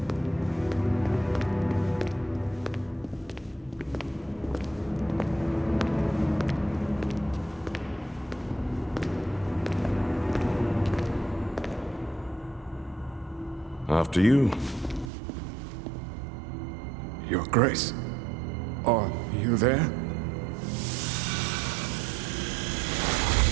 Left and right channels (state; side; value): drops out; left; at 15.1 s